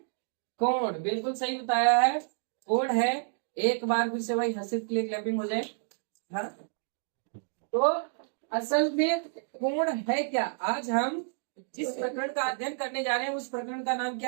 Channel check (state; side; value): silent; left; digital silence